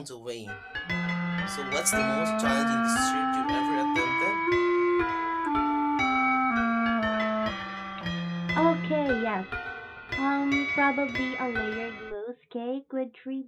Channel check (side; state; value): both; identical; correlation 1.00